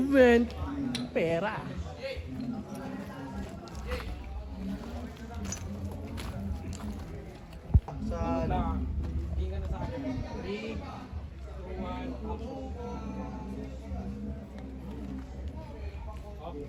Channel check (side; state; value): both; identical; correlation 1.00